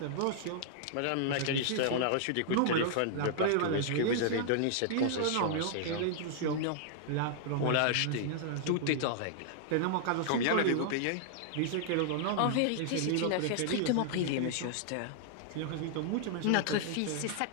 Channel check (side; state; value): both; different; correlation -0.01